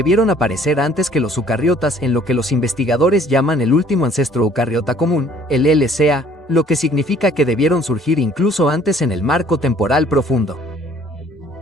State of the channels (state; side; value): normal; both; correlation 0.56